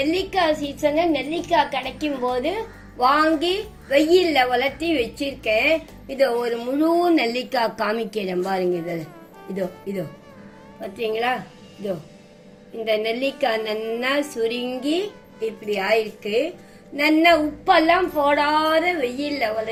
சீசன்ல நெல்லிக்காய் கிடைக்கும் போது வாங்கி வெயில்ல வளர்த்தி வச்சிருக்கேன். இதோ ஒரு முழு நெல்லிக்காய் காமிக்கிறேன் பாருங்க. இதோ பார்த்தீங்களா? இதோ இந்த நெல்லிக்காய் நல்லா சுருங்கி இப்படி ஆயிருக்கு. நல்லா உப்பெல்லாம் போடாத வெயில்ல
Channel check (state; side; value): identical; both; correlation 1.00